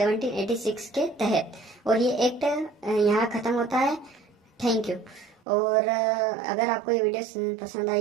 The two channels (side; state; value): left; drops out; at 5.4 s